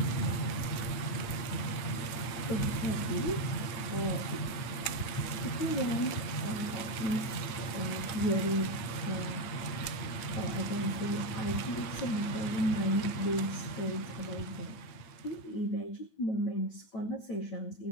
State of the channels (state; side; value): late; right; 8.8 ms